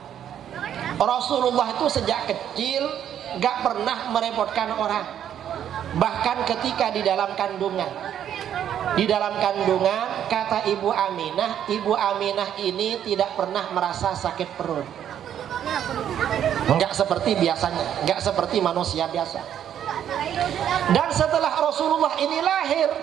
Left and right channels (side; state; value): left; quieter; 9.9 dB